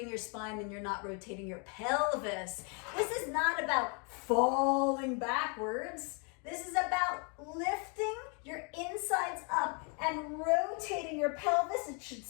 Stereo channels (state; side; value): quieter; right; 36.4 dB